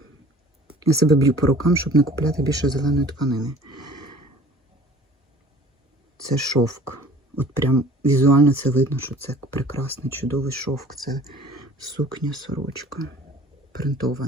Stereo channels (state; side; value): normal; both; correlation 0.48